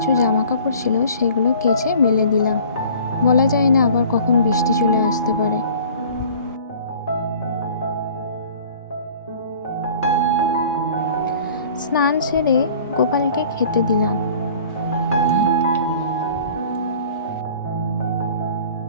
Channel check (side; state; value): both; inverted; correlation -0.47